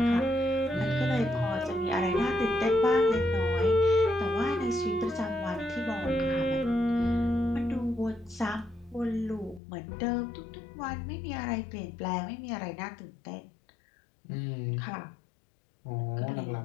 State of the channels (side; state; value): right; drops out; at 9.6 s